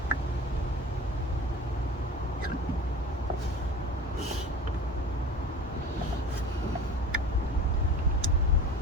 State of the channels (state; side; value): normal; both; correlation 0.37